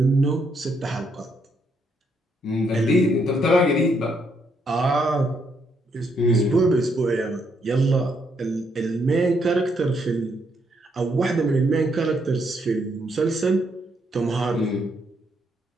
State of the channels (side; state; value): both; normal; correlation 0.75